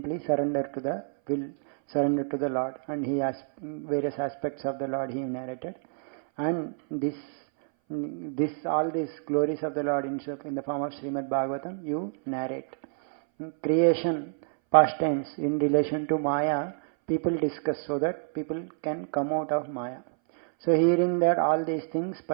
surrender to the Lord. And he has various aspects of the Lord he narrated. And all these glories of the Lord in the form of Srimad Bhagavatam, you narrate. Creation, pastimes in relation to Maya, people discuss so that people can come out of Maya. So hearing that all these things,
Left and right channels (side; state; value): left; silent; 59 dB below the other